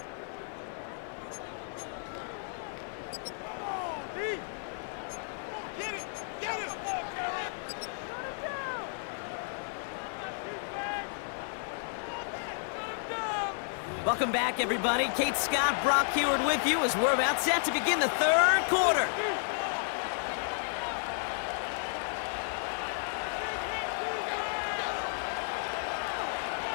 Welcome back, everybody. Kate Scott, Brock Heward with you as we're about set to begin the 3rd quarter.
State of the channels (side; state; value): right; silent; digital silence